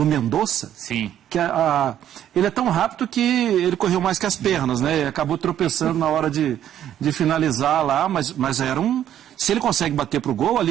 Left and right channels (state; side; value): quieter; left; 10.9 dB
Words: Mendonça. Sim. Que ele é tão rápido que ele correu mais que as pernas, né? E acabou tropeçando na hora de finalizar lá, mas era se ele consegue bater pro gol